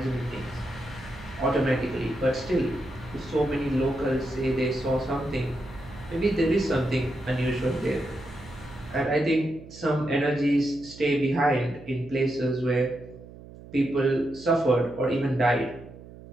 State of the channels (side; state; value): right; noise; hum, 17 dB below the sound